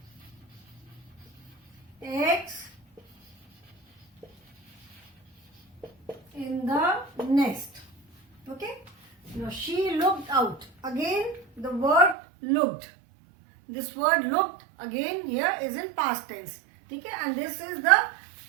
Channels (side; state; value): left; drops out; at 12.2 s